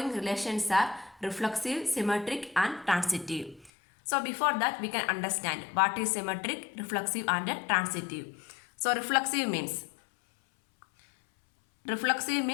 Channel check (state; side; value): drops out; right; at 3.7 s